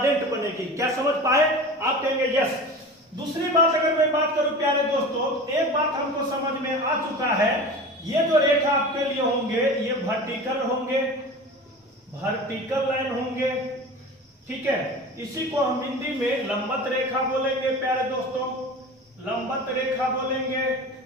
बनेगी। क्या समझ पाए? आप कहेंगे यस। दूसरी बात अगर मैं बात करूं प्यारे दोस्तों, एक बात हमको समझ में आ चुका है, ये जो रेखा आपके लिए होंगे ये वर्टिकल होंगे, वर्टिकल लाइन होंगे, ठीक है। इसी को हम हिंदी में लंबवत रेखा बोलेंगे प्यारे दोस्तों, लंबवत रेखा बोलेंगे।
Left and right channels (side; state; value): both; normal; correlation 0.34